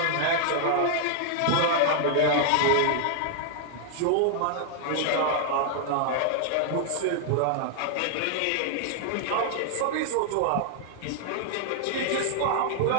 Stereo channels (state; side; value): different; both; correlation 0.00